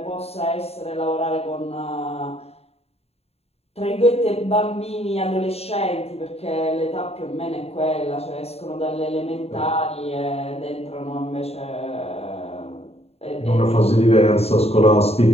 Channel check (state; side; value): late; right; 0.30 ms